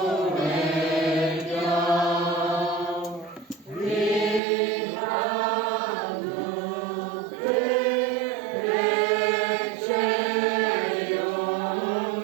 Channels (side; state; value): left; drops out; at 4.4 s